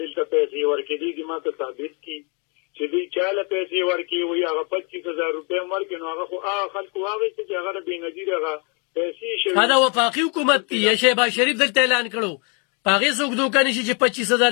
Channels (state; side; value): quieter; right; 35.3 dB